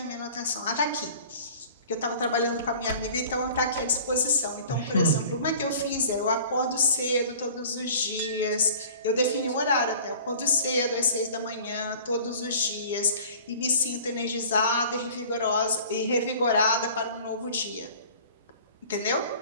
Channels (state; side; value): inverted; both; correlation -0.45